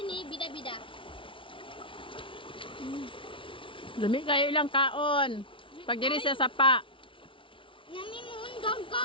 ni Bida-Bida. Lami kayo ilang kaon. Pag diri sa sapa. Nami mo undang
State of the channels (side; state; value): right; late; 0.25 ms